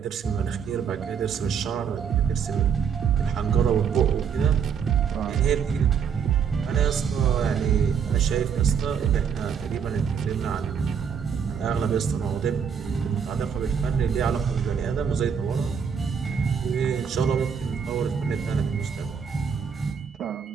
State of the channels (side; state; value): left; quieter; 7.0 dB